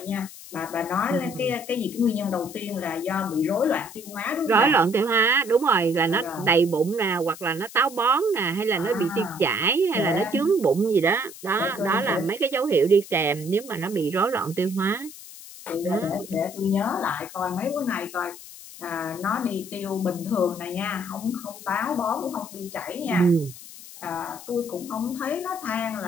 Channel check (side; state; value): left; noise; hiss, 16 dB below the sound